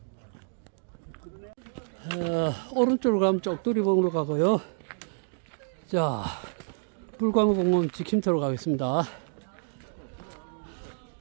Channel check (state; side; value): silent; left; 59 dB below the other